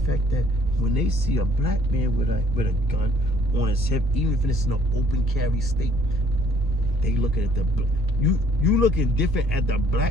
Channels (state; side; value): noise; right; rumble, 12 dB below the sound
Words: that when they see a black man with a gun on his hip, even if it's in an open carry state, they looking at you looking different at the